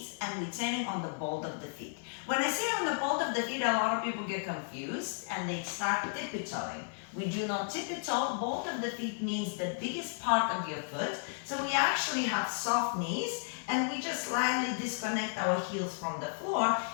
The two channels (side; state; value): right; silent; 55 dB below the other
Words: and returning on the ball of the feet. When I say on the ball of the feet, a lot of people get confused and they start tippy-toeing. We do not tippy-toe. Ball of the feet means the biggest part of your foot. So we actually have soft knees and we just slightly disconnect our heels from the floor,